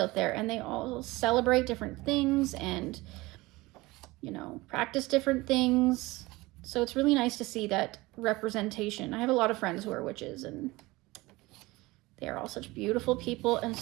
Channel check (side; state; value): left; quieter; 21.1 dB